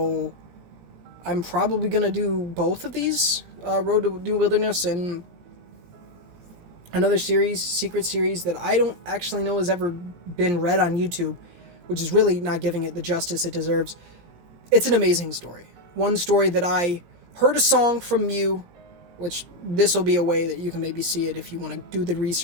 I'm probably going to do both of these. Road to New Wilderness and another series, secret series that I don't actually know has ever been read on YouTube, which is really not giving it the justice it deserves. It's an amazing story. One story that I heard a song from Mew, which this will be a way that you can maybe see it if you want to do the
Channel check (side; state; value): left; late; 17 ms